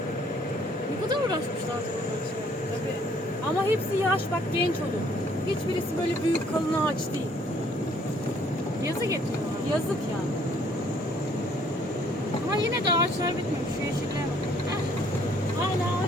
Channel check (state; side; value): normal; both; correlation 0.62